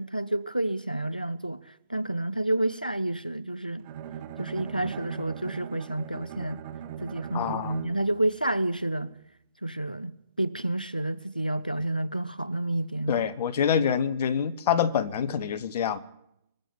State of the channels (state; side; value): inverted; both; correlation -0.70